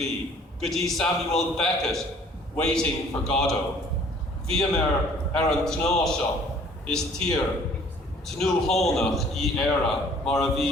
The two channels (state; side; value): normal; both; correlation 0.55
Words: go dtí Samuel Beckett waiting for Godot. Bhíam an tná seo is tír tnú hónach í éire mar a